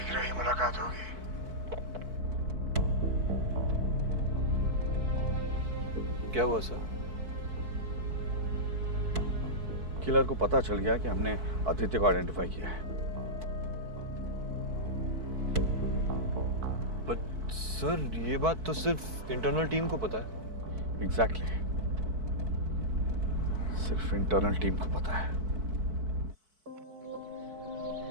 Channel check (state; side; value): late; left; 4.6 ms